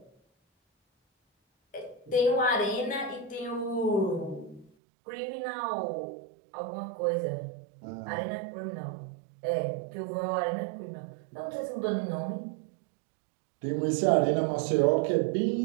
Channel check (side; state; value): left; drops out; at 4.7 s